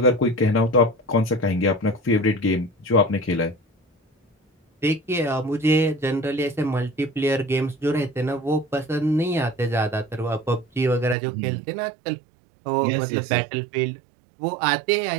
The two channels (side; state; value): left; drops out; at 11.2 s